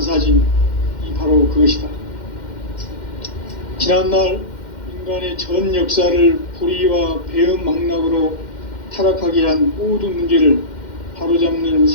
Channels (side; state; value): right; late; 2.1 ms